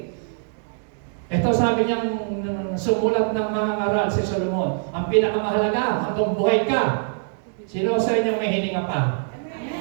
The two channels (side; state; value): left; silent; 63 dB below the other